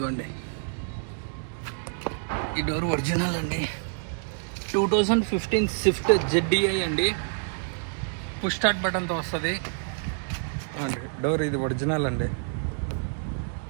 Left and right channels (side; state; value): left; silent; 60 dB below the other